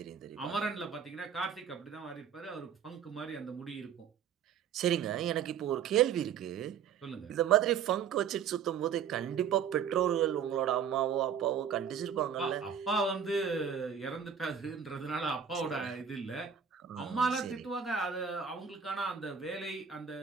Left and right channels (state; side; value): quieter; left; 7.7 dB